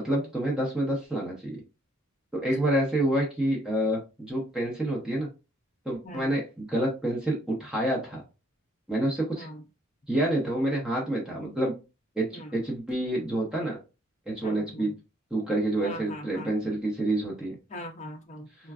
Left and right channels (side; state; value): both; normal; correlation 0.68